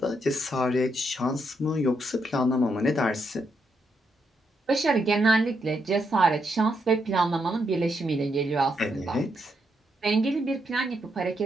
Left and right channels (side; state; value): both; normal; correlation 0.79